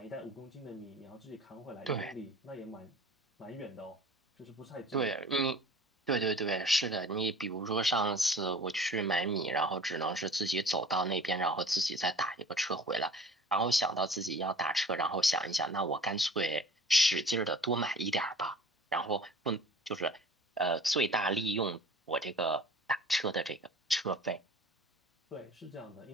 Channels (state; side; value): normal; both; correlation 0.46